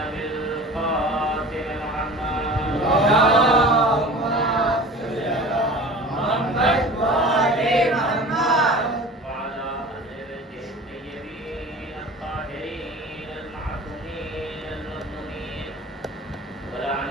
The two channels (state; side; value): normal; both; correlation 0.39